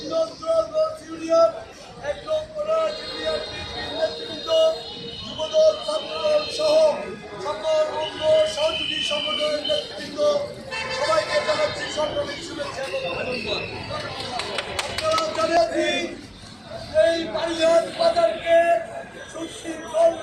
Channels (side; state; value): both; identical; correlation 1.00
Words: নন্দ্রগঞ্জ union, ১ নং কোরআন union নেতৃবৃন্দ, যুবদল, ছাত্রদল সহ সকল অঙ্গ সহযোগী সংগঠনের নেতৃবৃন্দ সবাইকে জানাচ্ছি সরকারি শুভেচ্ছা এবং অভিনন্দন। আপনারা জানেন এই বাড়িয়ার বাজারকে সুশৃঙ্খল